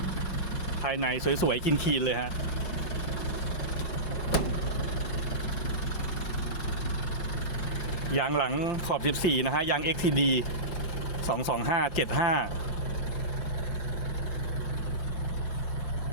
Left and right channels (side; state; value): right; late; 4.7 ms